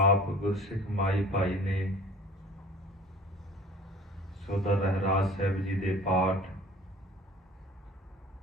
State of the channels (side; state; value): both; normal; correlation 0.45